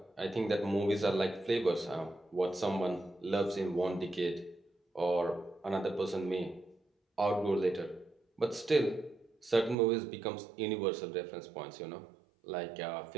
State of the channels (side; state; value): left; drops out; at 9.8 s